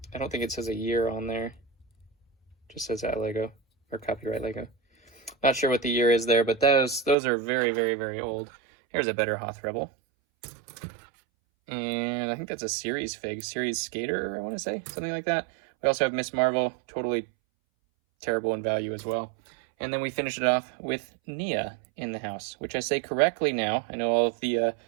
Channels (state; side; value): drops out; left; at 7.2 s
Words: don't think it says a year on there. It just says that Lego or copyright Lego. Not sure what the year is there, but those are very, very, very old. Here's a better Hoth Rebel. And I think that's a series fig, series skater, I want to say, something like that. We also have Miss Marvel, totally terrible in value as well. And then we finish it off with Nia in the house, which I say correctly now. I know all of the